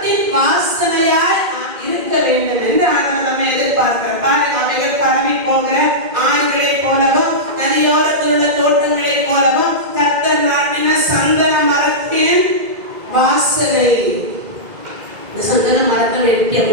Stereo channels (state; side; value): late; left; 2.1 ms